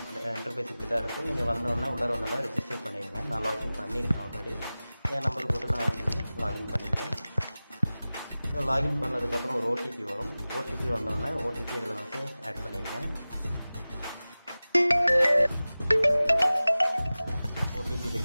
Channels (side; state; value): both; inverted; correlation -0.97